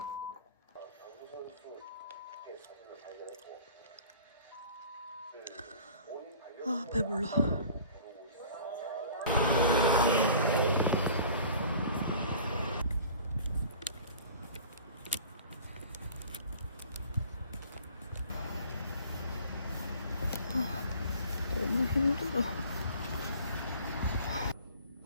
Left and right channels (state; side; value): inverted; both; correlation -0.47